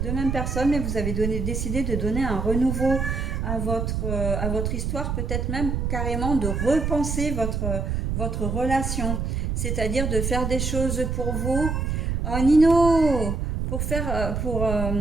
mêmes personnes, mais vous avez décidé de donner un renouveau à votre histoire, peut-être même carrément de repenser votre relation, c'est-à-dire de faire des choses pour vous. Oh Nino, pour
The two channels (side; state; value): right; noise; rumble, 1 dB below the sound